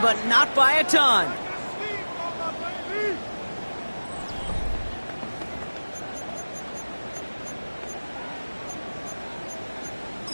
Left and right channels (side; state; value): both; inverted; correlation -1.00